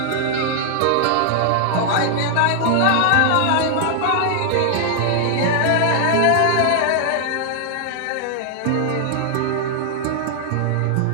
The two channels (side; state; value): both; different; correlation 0.00